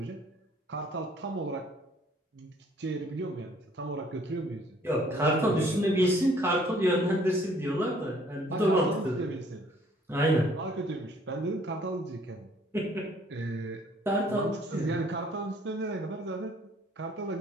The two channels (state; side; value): normal; both; correlation 0.60